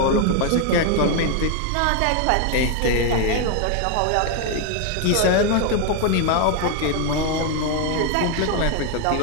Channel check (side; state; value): both; different; correlation 0.01